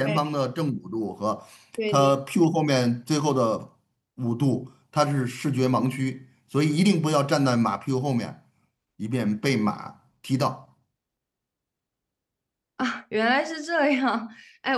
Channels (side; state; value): both; identical; correlation 1.00